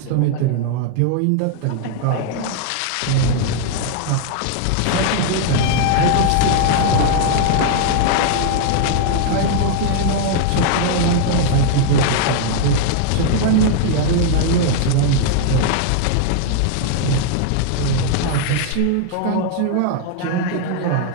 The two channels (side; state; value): both; different; correlation 0.00